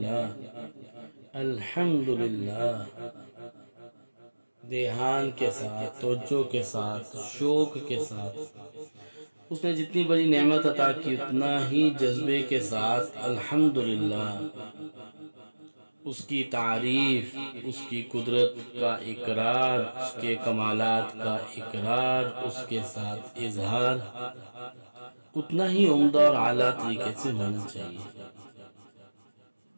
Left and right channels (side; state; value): both; inverted; correlation -1.00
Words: الحمدللہ، دھیان کے ساتھ، توجہ کے ساتھ، شوق کے ساتھ۔ اس نے جتنی بڑی نعمت عطا کی اتنا ہی جذبے کے ساتھ الحمدللہ، اس کی تعریف، اس کی قدرت کا اقرار، اس کے کمالات کا اقرار، اس کے ساتھ اظہار اتنا ہی عمدہ اور اعلیٰ طریقے سے ہونا چاہیے۔